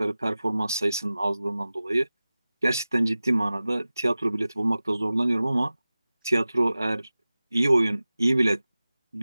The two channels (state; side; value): inverted; both; correlation -0.96